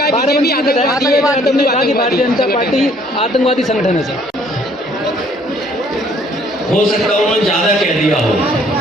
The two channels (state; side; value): normal; both; correlation 0.61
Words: बीजेपी आतंकवादी है, यादव ने कहा कि भारतीय जनता पार्टी आतंकवादी संगठन है। सर, हो सकता है उन्होंने ज्यादा कह दिया हो,